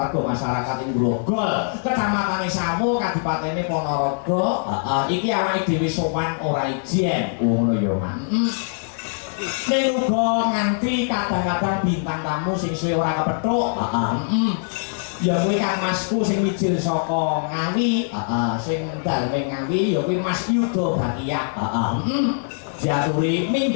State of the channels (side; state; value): right; silent; 64 dB below the other